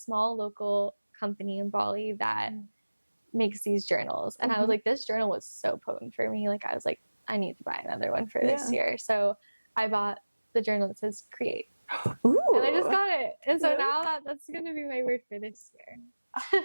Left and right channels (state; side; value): inverted; both; correlation -1.00